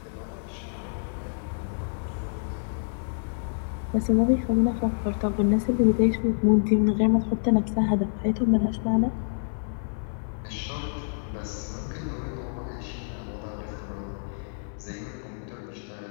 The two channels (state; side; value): silent; right; digital silence